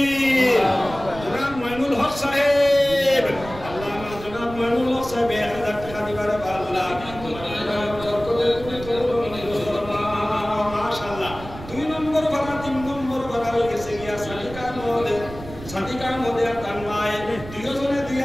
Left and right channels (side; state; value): right; noise; rumble, 14 dB below the sound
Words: জনাব মানুল হক সাহেব আল্লামা জনাব মানুল হক সাহেব 1000 টাকা দিবার আল্লাহ মাশাআল্লাহ 2 নম্বর ভাড়া 3 নম্বর ভাড়া হয়ে গেছে গিয়া সাদিকার মধ্যে তানমায় দুইজনে